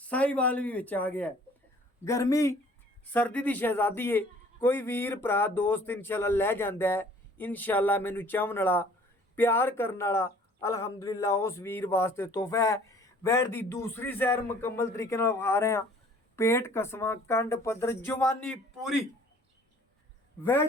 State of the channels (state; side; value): normal; both; correlation 0.54